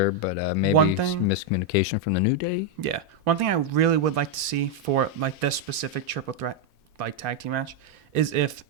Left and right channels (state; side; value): normal; both; correlation 0.00